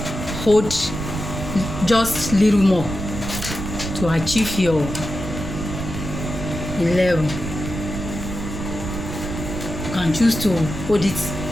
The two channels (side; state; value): right; noise; rumble, 6 dB below the sound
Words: hold just little more to achieve your 11. You can choose to hold it